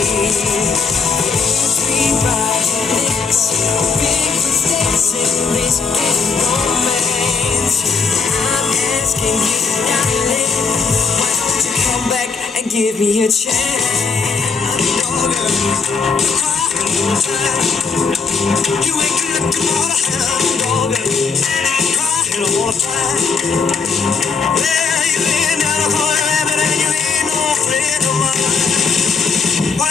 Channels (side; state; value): right; quieter; 5.0 dB